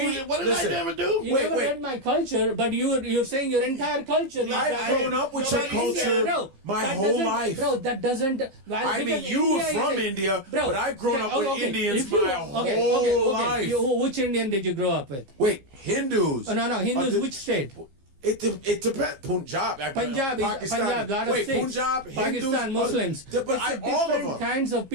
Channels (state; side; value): late; left; 15 ms